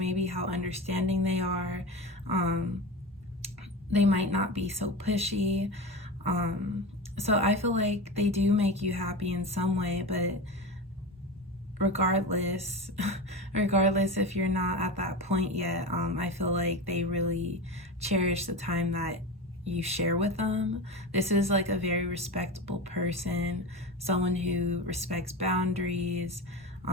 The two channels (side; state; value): both; normal; correlation 0.25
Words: how understanding they are. They might not be so pushy. So I feel like they do make you happy in some way, but regardless if you're not at that point yet, I feel like they really cherish the time that you share with them. This is like a very respectable person, someone who respects boundaries,